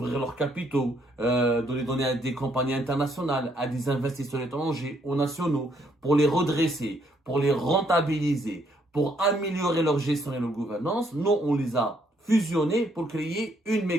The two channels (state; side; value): normal; both; correlation 0.70